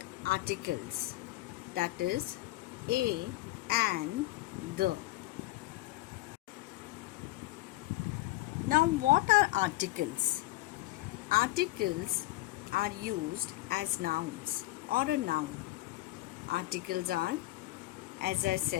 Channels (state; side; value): quieter; right; 18.7 dB